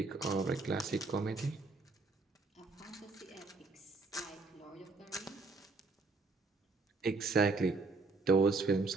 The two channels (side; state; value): left; quieter; 3.8 dB